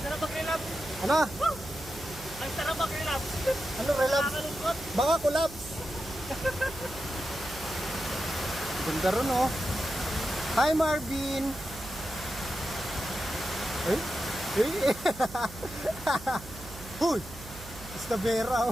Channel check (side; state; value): right; noise; hum, 15 dB below the sound